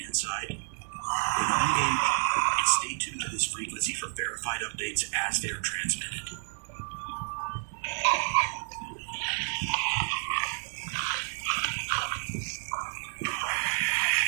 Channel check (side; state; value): left; silent; 58 dB below the other